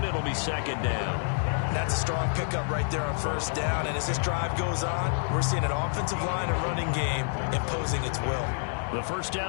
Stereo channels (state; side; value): silent; right; digital silence